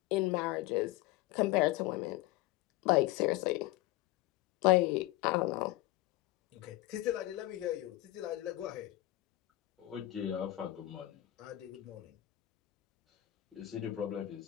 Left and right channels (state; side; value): quieter; right; 16.9 dB